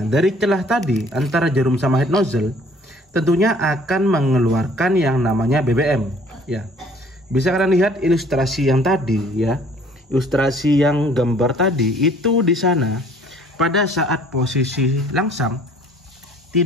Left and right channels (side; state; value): both; normal; correlation 0.55